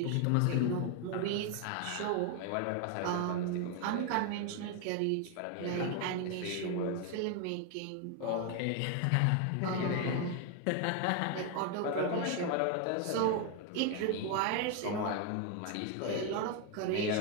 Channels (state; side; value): different; both; correlation 0.01